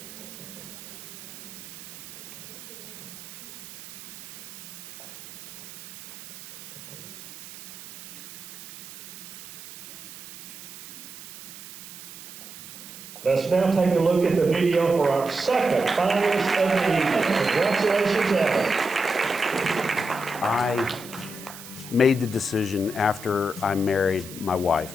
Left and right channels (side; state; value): right; noise; hiss, 15 dB below the sound